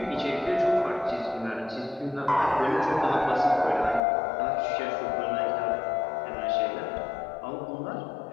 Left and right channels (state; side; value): drops out; right; at 4.0 s